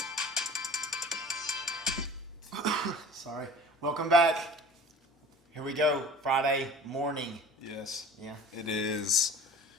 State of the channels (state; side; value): normal; both; correlation 0.42